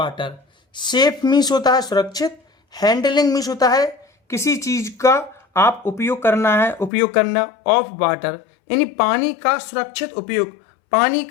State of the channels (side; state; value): right; drops out; at 6.9 s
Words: safe means होता है सुरक्षित, हैंडलिंग मीन्स होता है किसी चीज का आप उपयोग करना ऑफ वाटर यानी पानी का सुरक्षित उपयोग, पानी